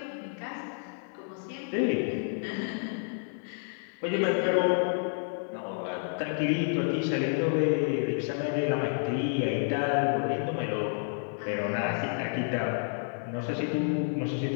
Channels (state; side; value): silent; right; 58 dB below the other